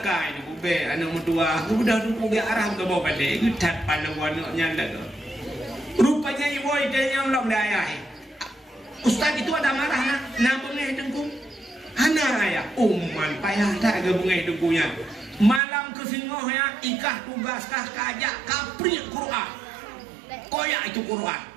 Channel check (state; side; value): drops out; left; at 15.6 s